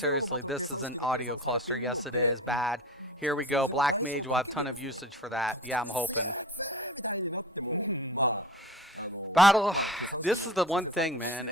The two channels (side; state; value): both; normal; correlation 0.36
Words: this is an audio cluster. Yes, it is. Bad. Here we go. Black Mage will have a ton of usage for that. Yeah, I'm hoping. Battle. This is the one thing, man.